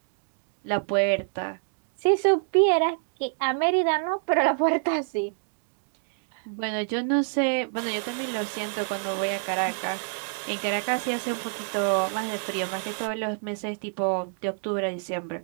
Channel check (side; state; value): left; silent; digital silence